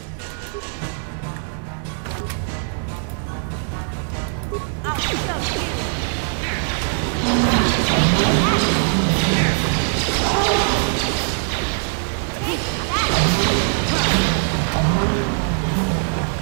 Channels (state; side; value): silent; left; 59 dB below the other